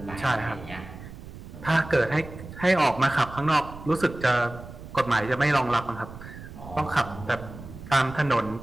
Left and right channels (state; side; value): noise; right; rumble, 14 dB below the sound